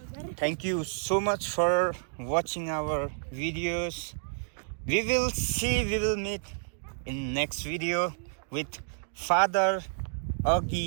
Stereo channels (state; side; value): silent; left; digital silence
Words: Thank you so much for watching our videos. We will meet in next video with Father